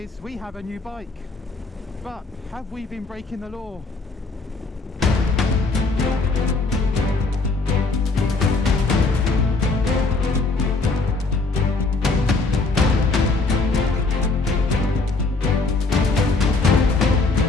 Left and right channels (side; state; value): right; quieter; 3.7 dB